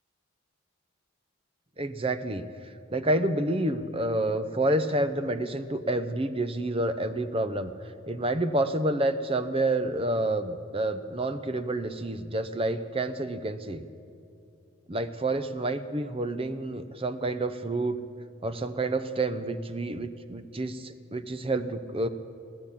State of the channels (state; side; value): normal; both; correlation 0.46